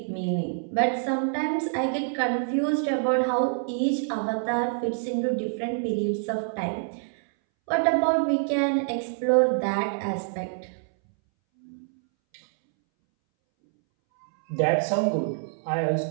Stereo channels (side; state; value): left; silent; 61 dB below the other